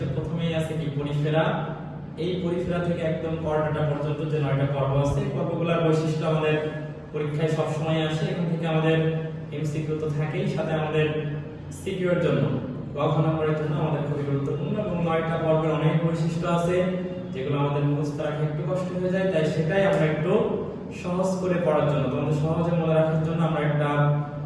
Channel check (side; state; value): both; identical; correlation 1.00